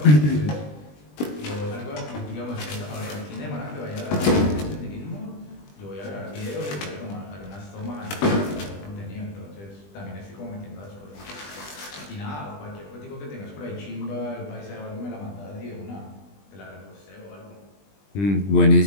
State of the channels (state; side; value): late; right; 20 ms